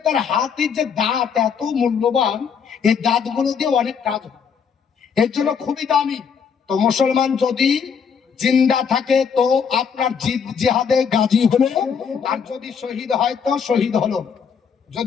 তার হাতির যে দাঁত এত মূল্যবান, এই দাঁতগুলো দিয়ে অনেক কাজ হয়, এর জন্য খুবই দামি। তো মুসলমান যদি জিন্দা থাকে তো আপনার জিহাদে গাজী হলো, আর যদি শহীদ হয় তো শহীদ হলো,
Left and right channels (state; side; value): quieter; right; 6.7 dB